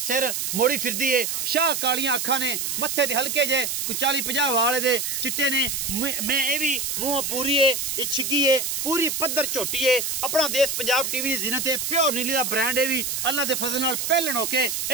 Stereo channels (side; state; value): right; noise; hiss, 2 dB below the sound